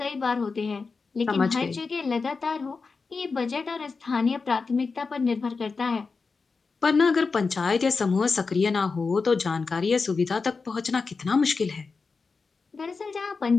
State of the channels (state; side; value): quieter; right; 4.6 dB